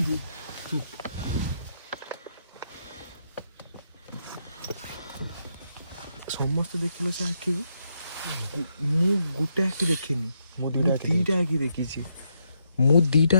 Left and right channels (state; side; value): inverted; both; correlation -0.79